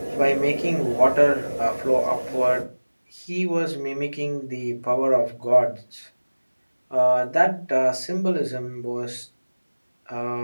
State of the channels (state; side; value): inverted; both; correlation -1.00